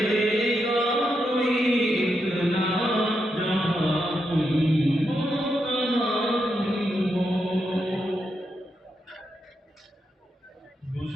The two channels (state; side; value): normal; both; correlation 0.83